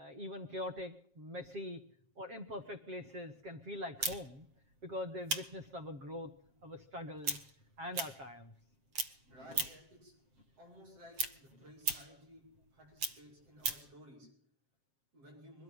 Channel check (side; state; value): left; late; 7.5 ms